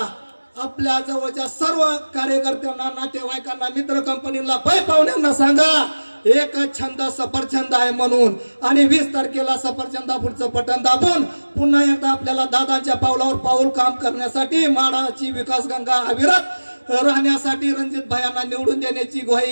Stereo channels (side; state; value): both; inverted; correlation -1.00